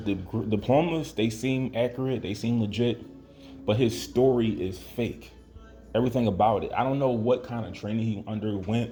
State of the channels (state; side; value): identical; both; correlation 1.00